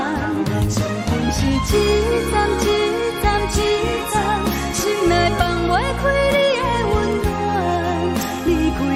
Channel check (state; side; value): identical; both; correlation 1.00